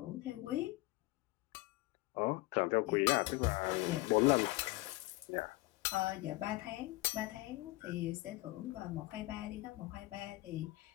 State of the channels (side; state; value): right; quieter; 20.5 dB